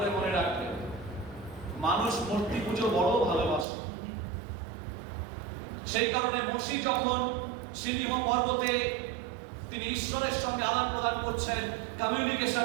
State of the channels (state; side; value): drops out; left; at 3.7 s